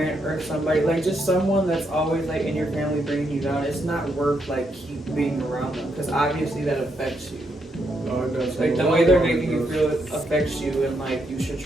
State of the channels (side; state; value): both; normal; correlation 0.78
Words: or somebody, like just someone that's always like in your family bringing you down, it's not worth like keep being around them, because obviously that affects you. Oh, it does. Like the way they're making you feel affects you, and like you should